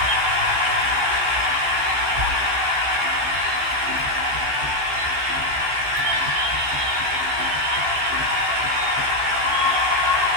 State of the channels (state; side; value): late; left; 15 ms